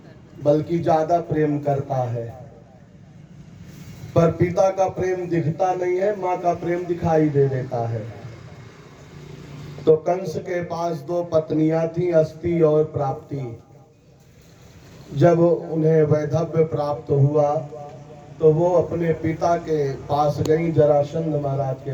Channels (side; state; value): both; identical; correlation 1.00